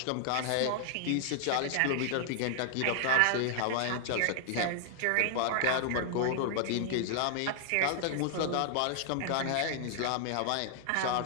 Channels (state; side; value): different; both; correlation 0.00